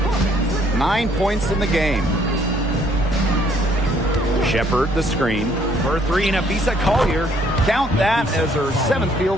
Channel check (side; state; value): both; normal; correlation 0.64